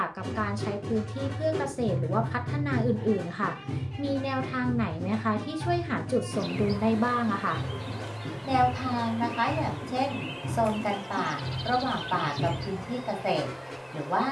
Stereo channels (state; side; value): identical; both; correlation 1.00